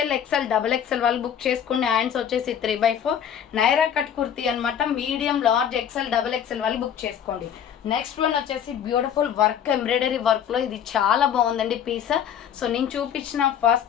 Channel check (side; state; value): right; quieter; 8.9 dB